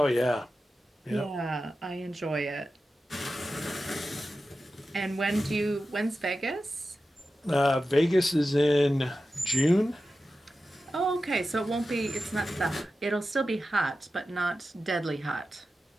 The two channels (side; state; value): both; normal; correlation 0.93